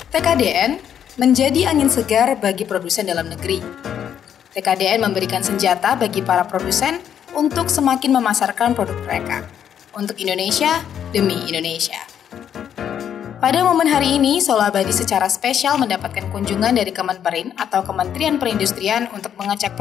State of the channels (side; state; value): right; quieter; 9.1 dB